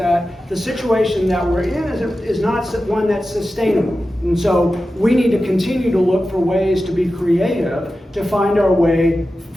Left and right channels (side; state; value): both; normal; correlation 0.93